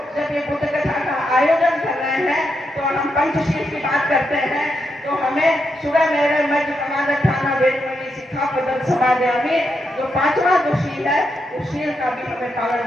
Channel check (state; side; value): normal; both; correlation 0.83